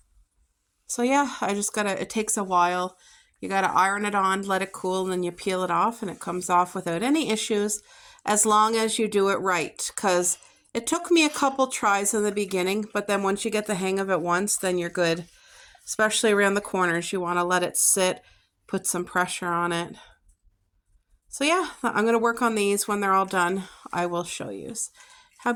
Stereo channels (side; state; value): both; identical; correlation 1.00